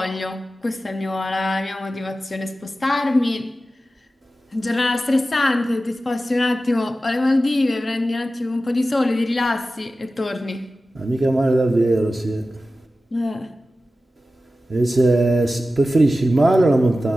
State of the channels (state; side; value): normal; both; correlation 0.94